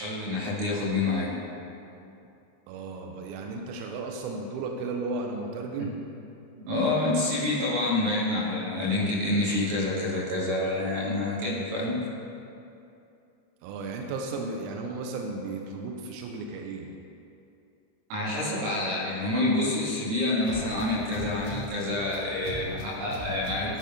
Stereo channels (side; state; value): left; late; 27 ms